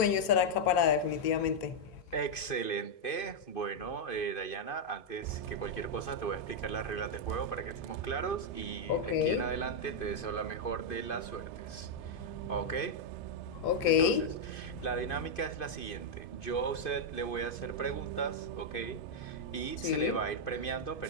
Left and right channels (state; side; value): late; right; 2.5 ms